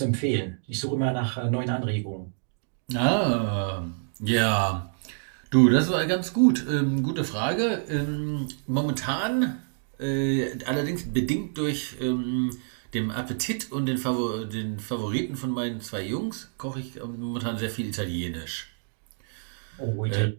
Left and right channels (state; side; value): silent; left; digital silence